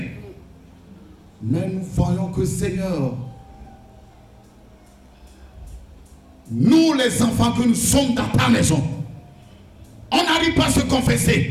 Mais nous voyons que, Seigneur, nous les enfants que nous sommes dans ta maison, on n'arrive pas à se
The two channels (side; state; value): both; identical; correlation 1.00